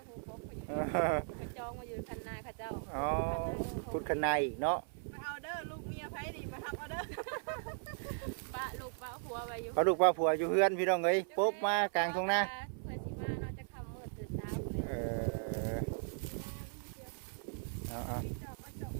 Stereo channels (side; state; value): left; silent; 53 dB below the other